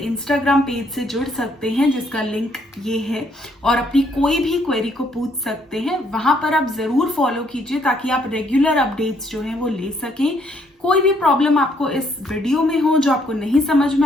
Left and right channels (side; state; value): both; normal; correlation 0.69